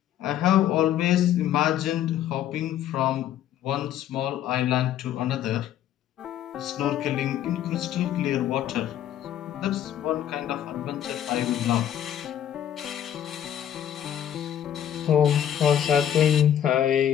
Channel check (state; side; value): quieter; right; 10.6 dB